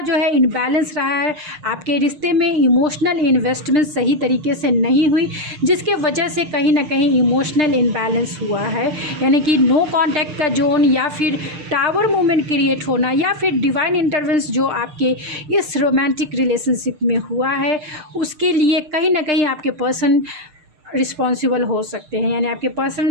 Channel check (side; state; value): left; late; 6.6 ms